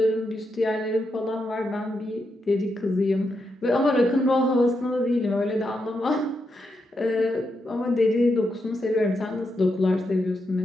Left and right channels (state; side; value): normal; both; correlation 0.84